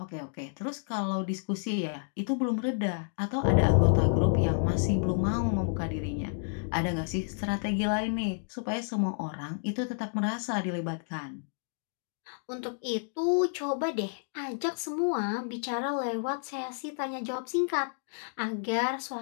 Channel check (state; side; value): silent; right; digital silence